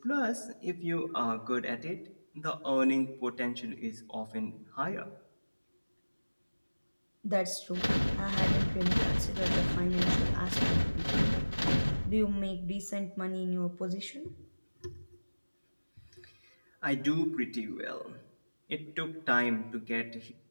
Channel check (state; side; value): inverted; both; correlation -1.00